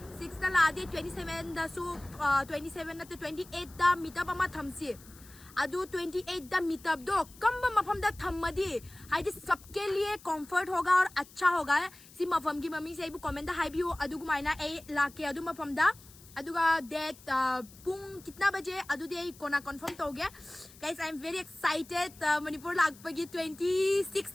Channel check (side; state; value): left; noise; hiss, 22 dB below the sound